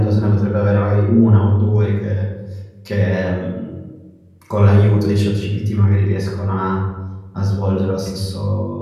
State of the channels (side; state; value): both; identical; correlation 1.00